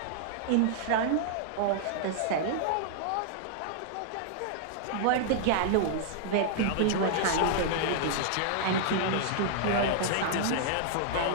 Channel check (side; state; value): both; different; correlation -0.01